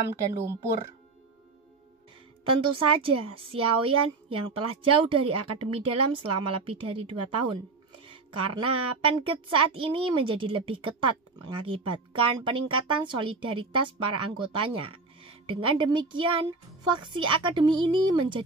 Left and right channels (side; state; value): left; quieter; 3.9 dB